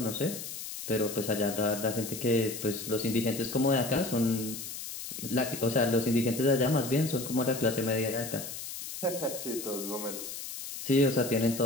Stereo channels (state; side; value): noise; left; hiss, 8 dB below the sound